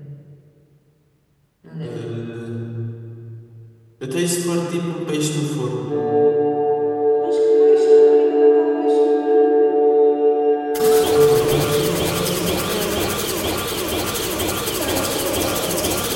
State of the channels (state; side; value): identical; both; correlation 1.00